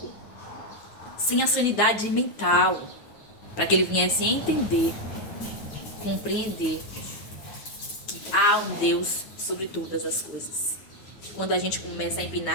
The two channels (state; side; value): late; right; 9.4 ms